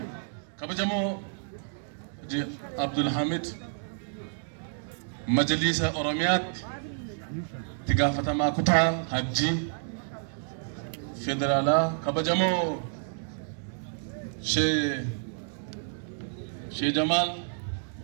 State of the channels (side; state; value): left; silent; digital silence